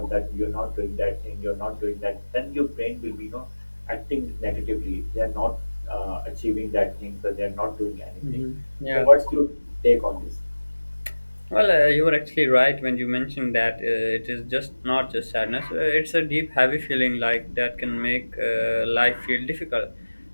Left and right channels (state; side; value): inverted; both; correlation -1.00